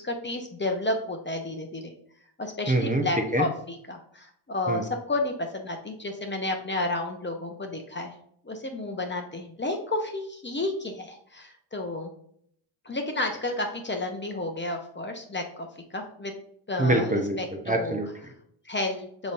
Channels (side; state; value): both; normal; correlation 0.09